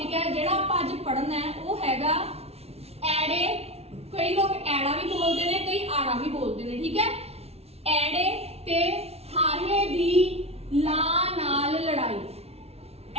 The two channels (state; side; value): late; left; 0.30 ms